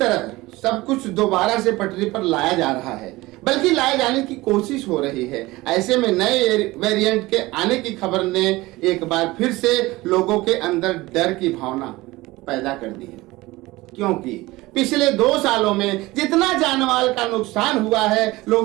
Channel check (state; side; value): quieter; left; 20.0 dB